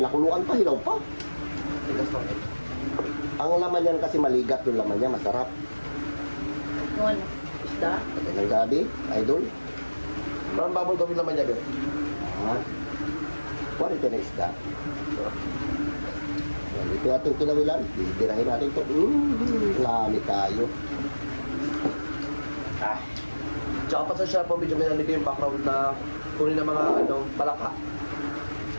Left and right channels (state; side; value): inverted; both; correlation -1.00